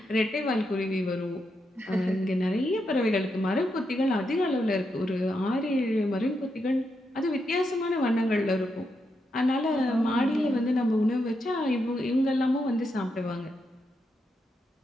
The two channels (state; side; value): normal; both; correlation 0.83